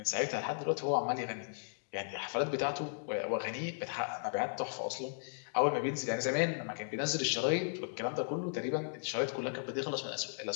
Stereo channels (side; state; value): right; silent; digital silence